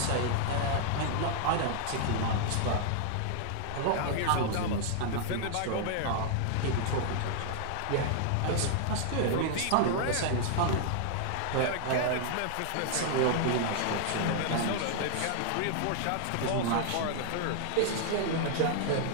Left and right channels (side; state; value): both; different; correlation -0.01